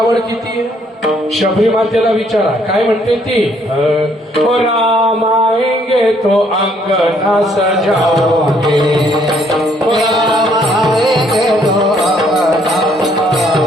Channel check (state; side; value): normal; both; correlation 0.66